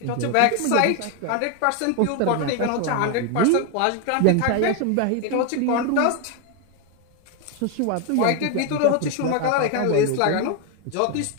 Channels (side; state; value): both; different; correlation 0.01